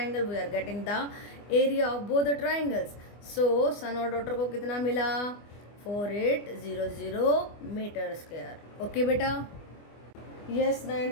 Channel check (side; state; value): right; late; 24 ms